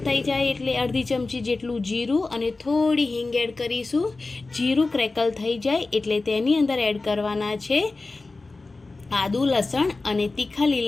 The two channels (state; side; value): quieter; right; 3.5 dB